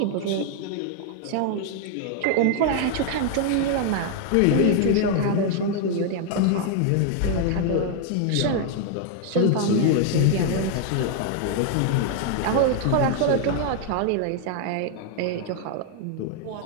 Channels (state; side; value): different; both; correlation 0.00